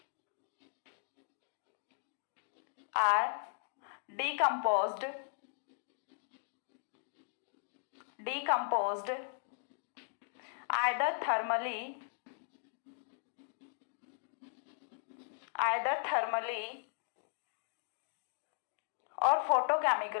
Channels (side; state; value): right; silent; digital silence